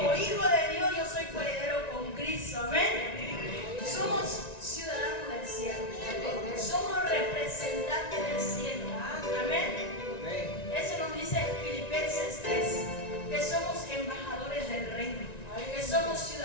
hijo de Dios yo soy coheredero con Cristo. Amén. Somos ciudadanos del cielo. Somos representantes del cielo. Amén. Eso nos dice Filipenses 3, que somos embajadores del reino, que somos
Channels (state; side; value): late; right; 1.9 ms